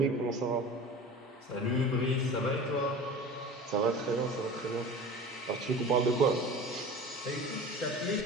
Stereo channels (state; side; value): normal; both; correlation 0.36